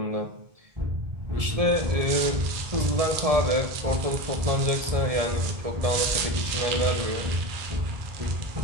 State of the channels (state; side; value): late; left; 1.7 ms